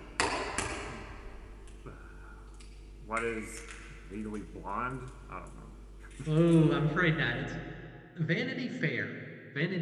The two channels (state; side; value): identical; both; correlation 1.00